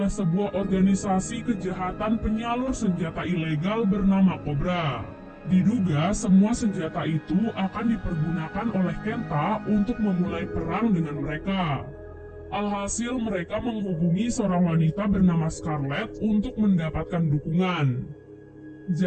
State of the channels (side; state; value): both; identical; correlation 1.00